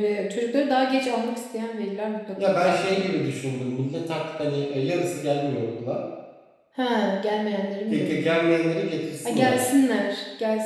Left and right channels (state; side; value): identical; both; correlation 1.00